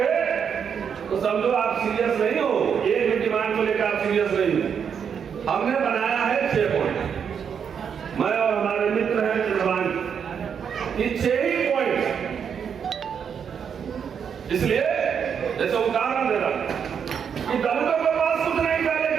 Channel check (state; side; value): quieter; left; 7.3 dB